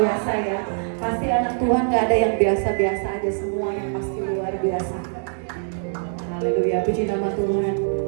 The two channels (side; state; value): left; silent; digital silence